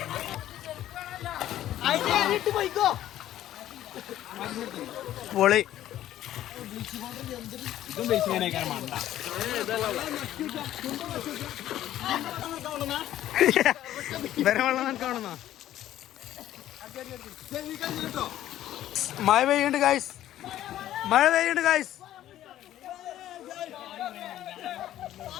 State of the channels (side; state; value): right; quieter; 12.8 dB